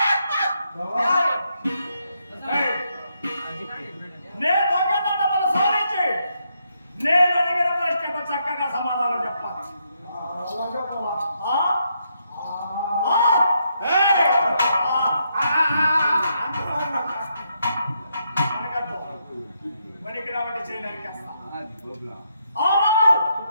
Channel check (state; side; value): inverted; both; correlation -0.78